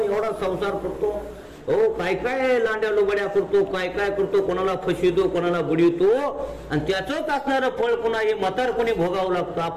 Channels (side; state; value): both; identical; correlation 1.00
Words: एवढा संसार करतो, हो काय काय लांड्या लोबड्या करतो, काय काय करतो, कोणाला फसवितो, कोणाला बुडवितो, आणि त्याचंच असणारं फळ पुन्हा हे म्हातारपणी भोगावं लागतं.